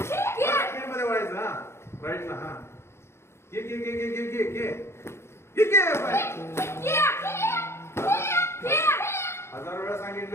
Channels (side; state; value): right; late; 0.13 ms